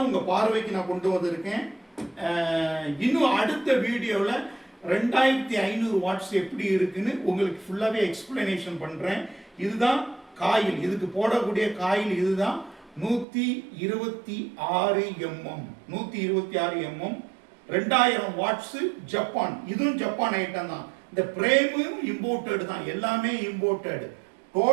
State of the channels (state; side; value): drops out; left; at 13.2 s